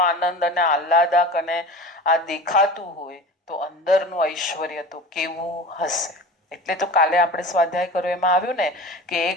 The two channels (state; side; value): normal; both; correlation 0.35